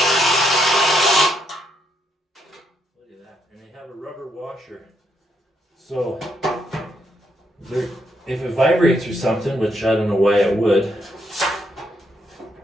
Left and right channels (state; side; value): normal; both; correlation 0.76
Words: at that. And they have a rubber washer. So if it vibrates or something, which I don't know why it would.